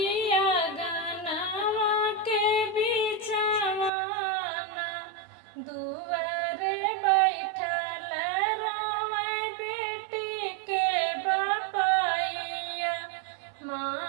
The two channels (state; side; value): drops out; left; at 3.9 s